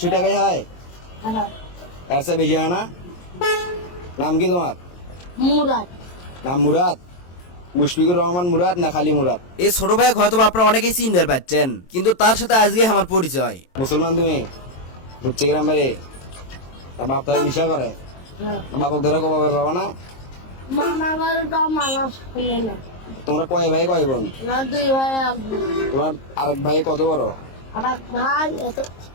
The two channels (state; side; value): late; right; 23 ms